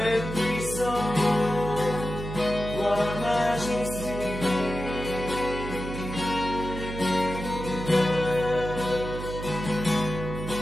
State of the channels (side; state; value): right; noise; hum, 7 dB below the sound